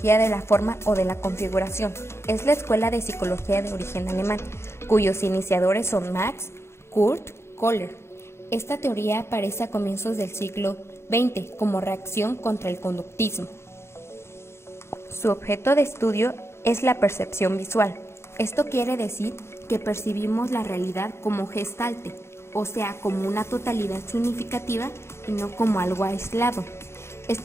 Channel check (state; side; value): late; right; 0.13 ms